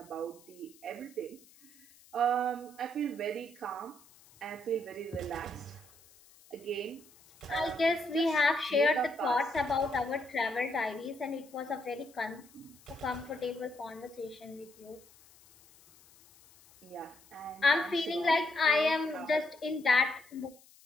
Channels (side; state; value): left; noise; hiss, 26 dB below the sound